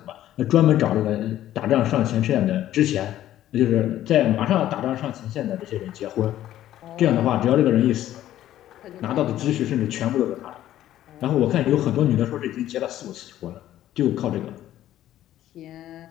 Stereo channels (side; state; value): right; quieter; 12.9 dB